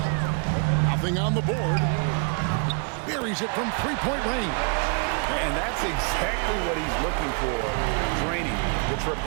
Nothing on the board. Buries it from three-point range. And that's exactly what he's looking for, draining the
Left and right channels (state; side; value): quieter; left; 38.2 dB